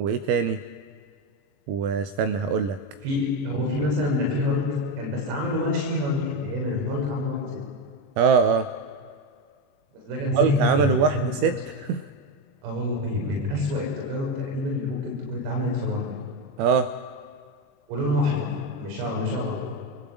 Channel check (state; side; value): late; left; 21 ms